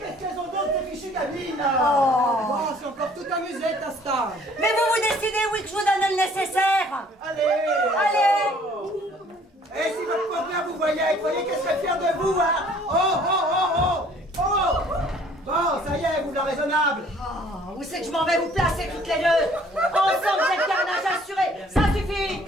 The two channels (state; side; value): normal; both; correlation 0.57